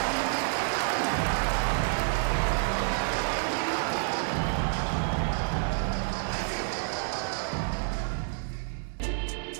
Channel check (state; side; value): silent; left; 59 dB below the other